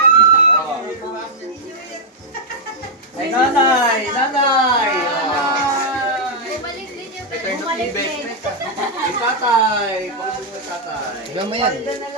Ay, nanay! Nanay! Bumalik din yung Ito yung bumalik din. investment. Ay, tatay! Pakabog na tatay. Diba mo yan?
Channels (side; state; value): both; normal; correlation -0.03